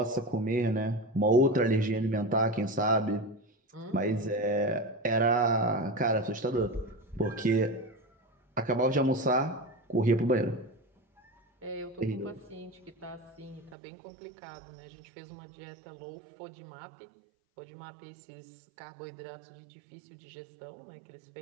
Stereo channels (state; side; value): drops out; left; at 13.8 s